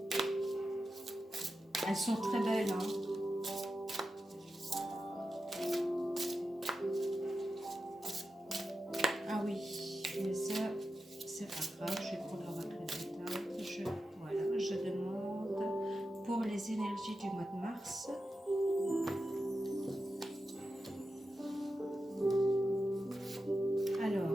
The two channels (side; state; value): both; normal; correlation 0.90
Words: Elles sont très belles, Ah oui, mais ça, c'est pas grave. Je vais prendre l'oracle de Tao. Voilà, je demande pour les énergies du mois de mars.